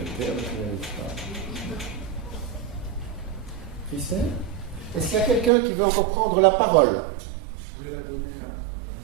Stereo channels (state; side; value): drops out; left; at 5.5 s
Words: Christelle ? Est-ce qu'il y a quelqu'un qui veut encore prendre la parole? Je vais la donner